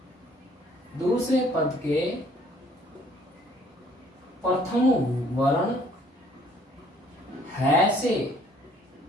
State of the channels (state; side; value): normal; both; correlation 0.60